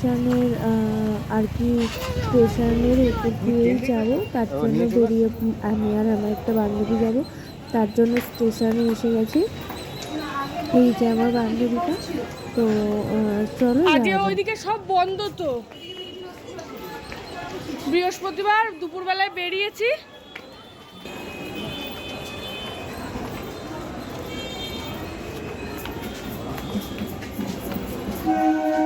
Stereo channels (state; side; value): identical; both; correlation 1.00